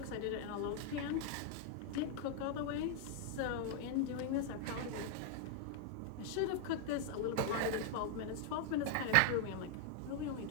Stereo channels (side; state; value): both; different; correlation 0.00